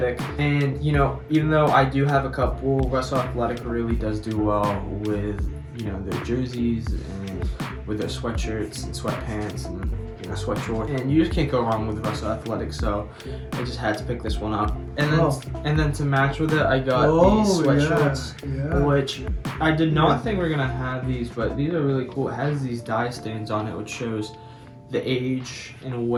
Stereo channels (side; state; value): both; identical; correlation 1.00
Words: And you know, even though I do have a couple, Russell Athletic really does do well with, you know, their jerseys and with their sweatshirts and sweatpants, and and a sweat short, and you just can't go wrong with Russell Athletic, so I just had to pick this one up. And then to match with it, I got these sweatshorts, which I did not think we were gonna have these, but these are really cool. It has these dye stains on it, which shows the age and